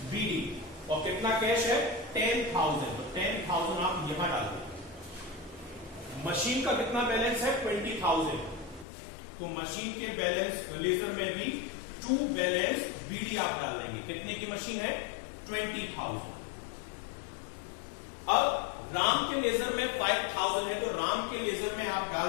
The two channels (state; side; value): drops out; right; at 8.8 s